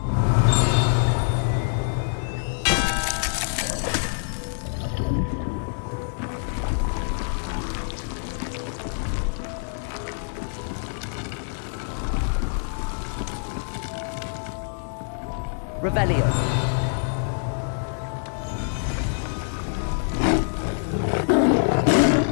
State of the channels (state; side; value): silent; right; digital silence